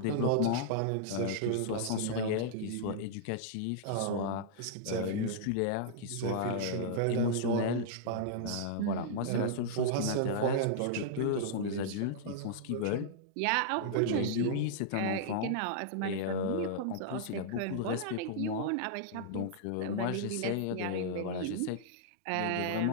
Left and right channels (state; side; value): different; both; correlation -0.02